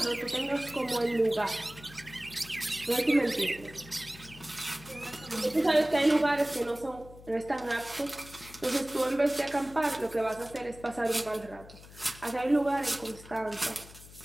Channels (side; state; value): left; noise; hum, 19 dB below the sound